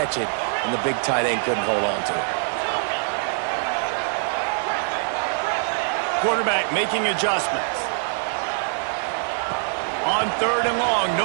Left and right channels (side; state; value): left; silent; digital silence